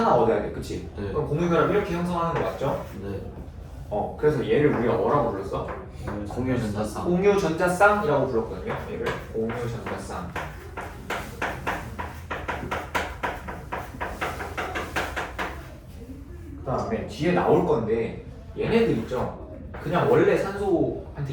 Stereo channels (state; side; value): identical; both; correlation 1.00